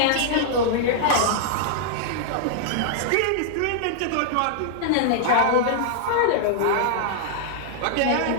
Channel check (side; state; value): both; different; correlation -0.01